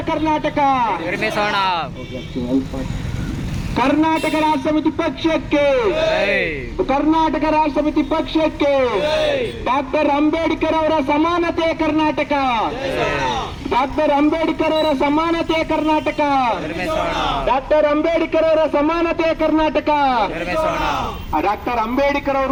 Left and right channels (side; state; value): both; identical; correlation 1.00